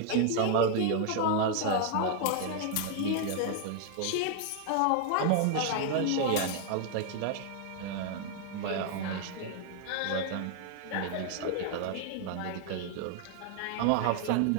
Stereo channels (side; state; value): both; different; correlation 0.00